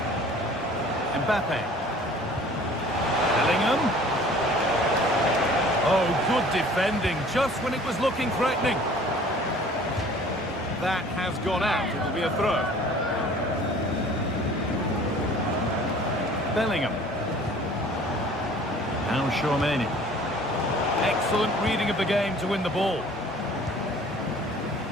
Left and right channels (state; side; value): normal; both; correlation 0.49